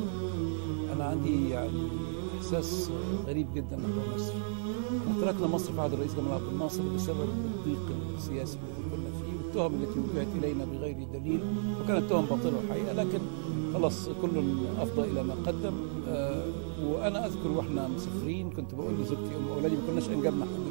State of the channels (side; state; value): left; silent; digital silence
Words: انا عندي يعني احساس غريب جدا نحو مصر. تركنا مصر في عهد الرئيس جمال عبد الناصر بسبب الضيق السياسي اللي كنا فيه والتهم التي وجهت الينا بغير دليل، وكانت تهم باطله الحقيقه، لكن خلاص كل افضى الى ما قدم. وانا اذكر واحنا مسافرين كنت بقول لزوجتي ام اولادي، ما كناش انجبنا